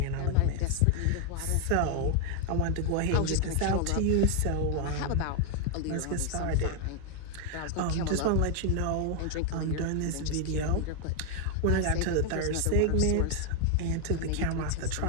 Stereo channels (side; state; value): both; different; correlation 0.00